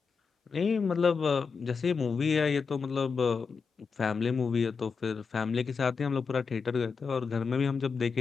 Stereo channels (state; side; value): quieter; right; 5.4 dB